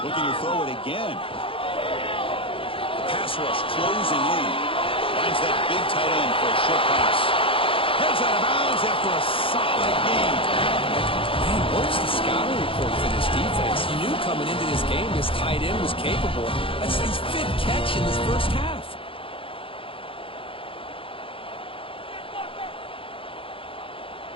Looking to throw it again. The pass rush closing in. Finds that big tight end for a short pass. Heads out of bounds after a solid game. Man, where's the scouting report for this defense? You knew coming into this game this tight end was capable. That's his 5th catch in this first half.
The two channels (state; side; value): late; right; 0.26 ms